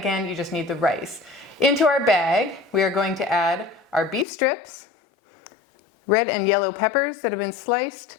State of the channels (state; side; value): drops out; right; at 4.2 s